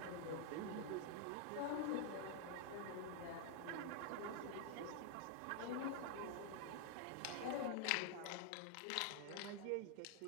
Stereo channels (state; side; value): different; both; correlation 0.00